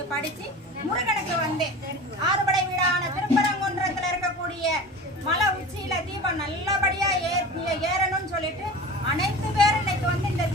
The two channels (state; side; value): normal; both; correlation 0.35